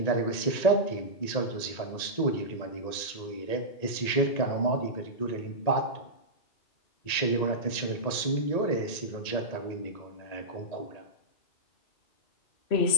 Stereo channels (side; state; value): right; late; 1.9 ms